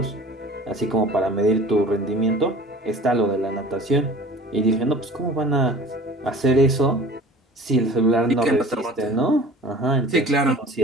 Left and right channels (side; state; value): both; normal; correlation 0.43